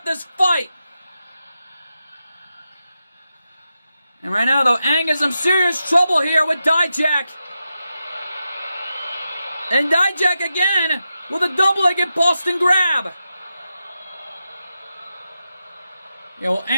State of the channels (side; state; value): both; inverted; correlation -0.89